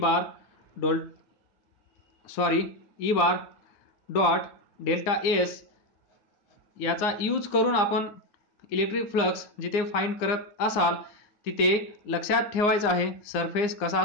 dot delta S, याचा यूज करून आपण इलेक्ट्रिक फ्लक्स जिथे फाइंड करत असाल तिथे लक्षात ठेवायचं आहे, सरफेस कसा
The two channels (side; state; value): right; late; 9.6 ms